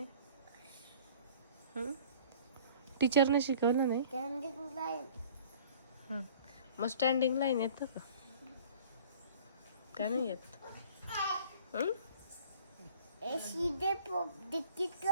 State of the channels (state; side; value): inverted; both; correlation -0.50